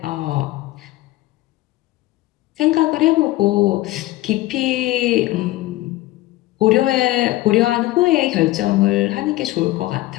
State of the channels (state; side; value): quieter; right; 17.7 dB